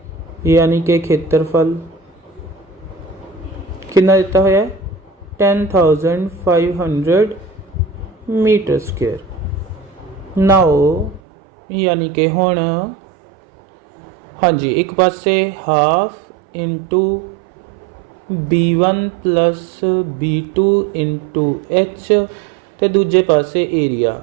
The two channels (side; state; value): left; drops out; at 11.2 s